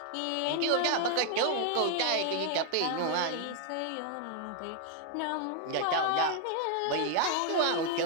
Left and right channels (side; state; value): both; different; correlation 0.00